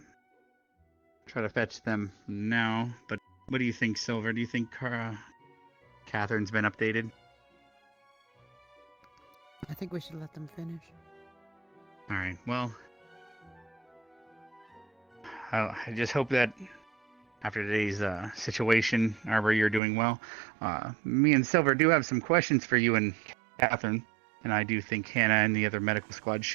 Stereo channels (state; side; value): drops out; left; at 19.8 s